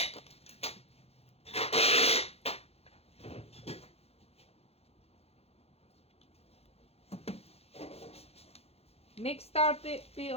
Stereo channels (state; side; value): late; right; 0.29 ms